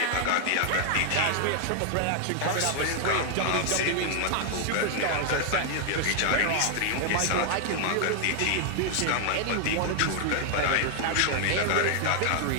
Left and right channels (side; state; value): both; different; correlation 0.00